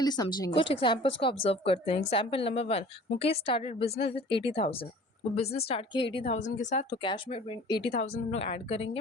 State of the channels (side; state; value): both; normal; correlation 0.46